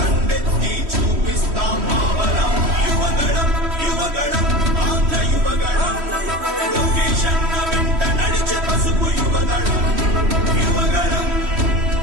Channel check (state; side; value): late; left; 3.1 ms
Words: చూపిస్తాం మావలం యువగణం యువగణం ఆంధ్ర యువగణం లొకేషన్ వెంట నడిచే పసుపు యువగణం యువగణం